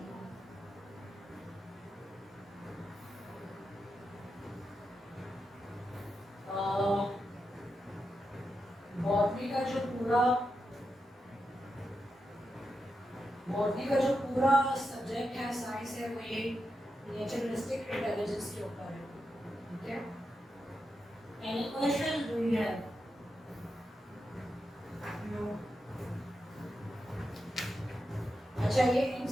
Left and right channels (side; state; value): both; normal; correlation 0.87